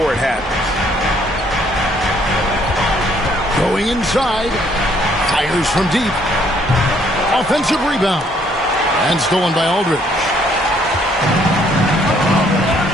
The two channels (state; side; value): normal; both; correlation 0.65